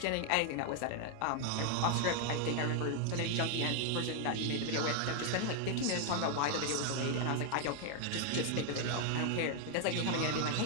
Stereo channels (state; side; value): different; both; correlation 0.00